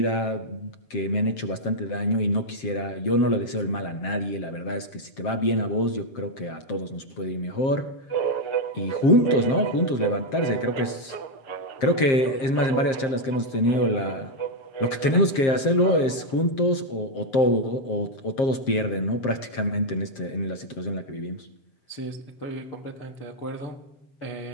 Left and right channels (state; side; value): late; right; 7.5 ms